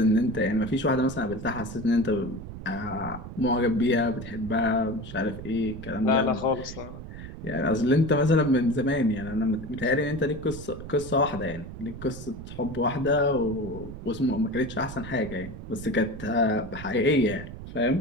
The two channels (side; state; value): right; noise; rumble, 11 dB below the sound